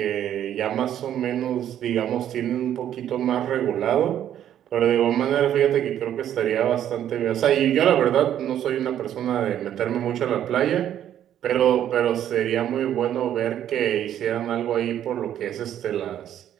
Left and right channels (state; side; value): quieter; left; 10.7 dB